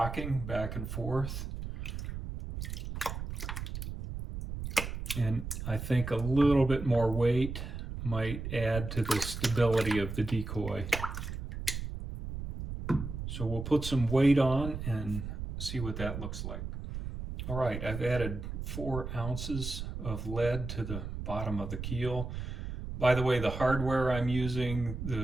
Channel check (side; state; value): right; noise; rumble, 6 dB below the sound